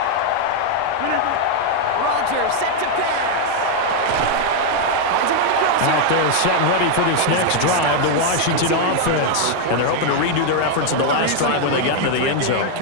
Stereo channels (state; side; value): different; both; correlation 0.00